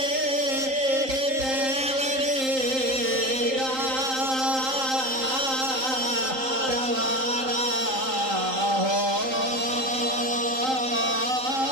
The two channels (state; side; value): late; left; 3.8 ms